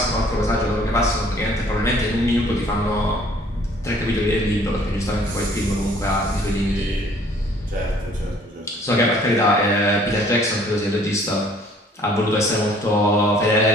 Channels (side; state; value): both; normal; correlation 0.57